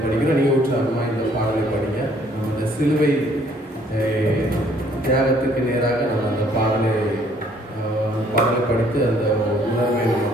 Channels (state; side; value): normal; both; correlation 0.62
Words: படிக்கிறோம். நீங்கள் உற்சாகமாக இந்த பாடலை படிங்க. நம்ம இந்த சிலுவை தியாகத்துக்கு நேராக நம்ம அந்த பாடலை படித்து அந்த உணர்வை நம்ம